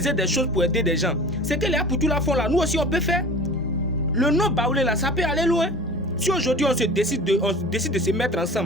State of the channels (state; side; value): normal; both; correlation 0.39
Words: des choses pour aider des gens. C'est que les Apoutou la font là. Nous aussi, on peut faire. Le nom baoulé, là, ça peut aller loin. Si aujourd'hui, on décide de se mettre